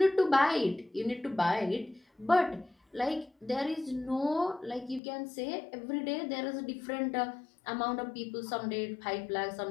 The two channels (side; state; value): right; drops out; at 5.0 s